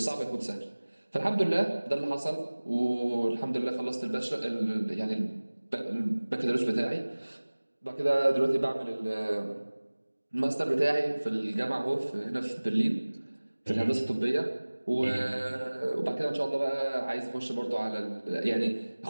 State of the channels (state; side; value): inverted; both; correlation -1.00